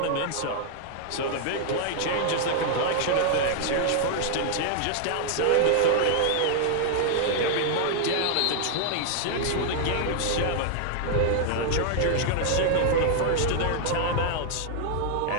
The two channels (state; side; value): different; both; correlation 0.00